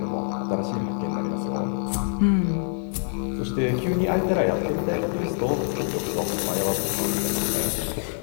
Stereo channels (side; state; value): right; silent; 61 dB below the other